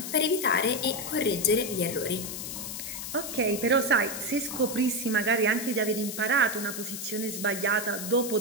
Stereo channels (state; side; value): noise; left; hiss, 7 dB below the sound